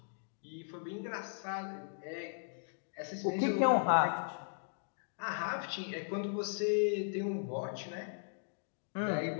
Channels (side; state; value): right; silent; digital silence